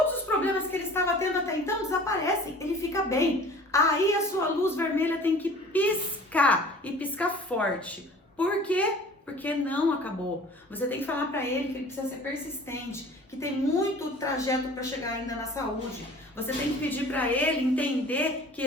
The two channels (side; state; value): both; normal; correlation 0.46